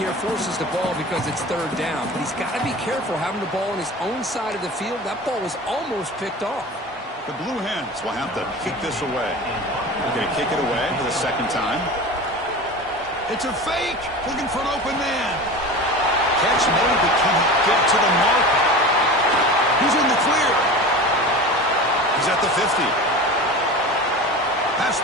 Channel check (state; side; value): normal; both; correlation 0.33